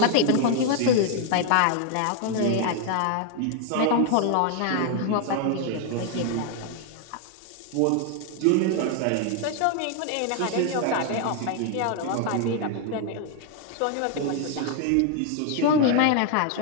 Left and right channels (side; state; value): both; different; correlation 0.00